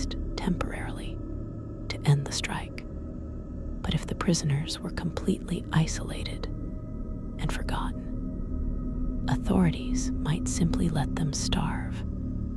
temporarily to end the strike. But if the prisoners were completely isolated and forgotten, authorities might simply let them starve,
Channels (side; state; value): both; identical; correlation 1.00